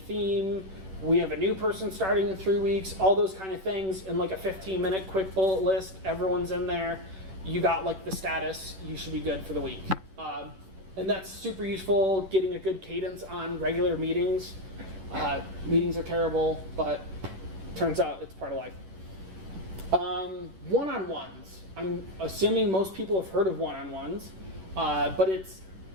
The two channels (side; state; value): left; late; 10 ms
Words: We have a new person starting in 3 weeks. All those kind of things in like a 15-minute quick bullet list. Everyone's in there. You got like the status. You should be good for the week. And that's super useful, getting a good cadence on regular meetings. Meetings are terrible, but turns out it's part of life. One-on-ones. I'm assuming most people have heard of one-on-ones, but it's